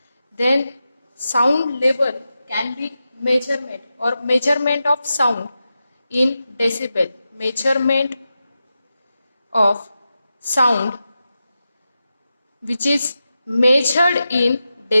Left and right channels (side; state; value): both; inverted; correlation -0.91